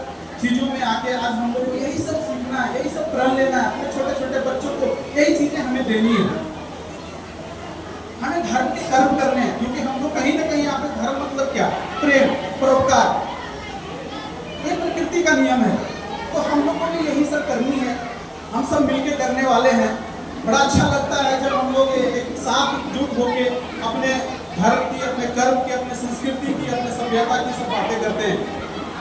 चीजों में आके आज हम लोग को यही सब सीखना है, यही सब प्रण लेना है। अपने छोटे छोटे बच्चों को यही चीजें हमें देनी है। हमें धर्म के कर्म करने हैं, क्योंकि हम लोग कहीं ना कहीं यहाँ पे धर्म मतलब क्या? प्रेम, परोपकार, ये प्रकृति का नियम है। तो हम लोग को भी यही सब करनी है, हम सब मिलके करने वाले हैं। बड़ा अच्छा लगता है जब हम लोग एक साथ एकजुट होके अपने धर्म की, अपने कर्म की, अपने संस्कृति की, अपने सभ्यता की सब बातें करते हैं।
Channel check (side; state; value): both; identical; correlation 1.00